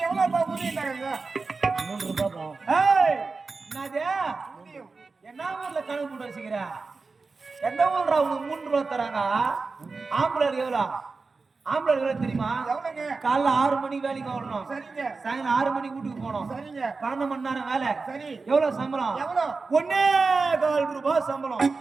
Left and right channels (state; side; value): quieter; left; 4.2 dB